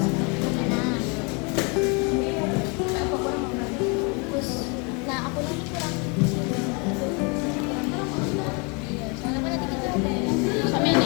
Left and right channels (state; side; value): quieter; right; 32.0 dB